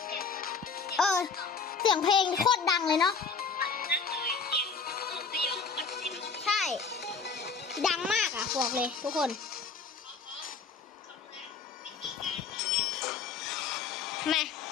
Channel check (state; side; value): quieter; right; 5.3 dB